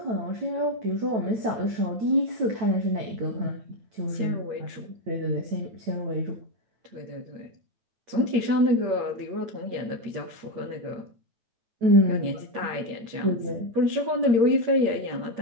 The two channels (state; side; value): late; left; 8.6 ms